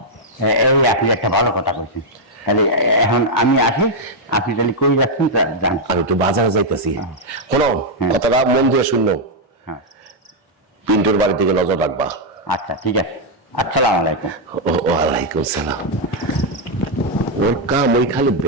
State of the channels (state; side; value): normal; both; correlation -0.01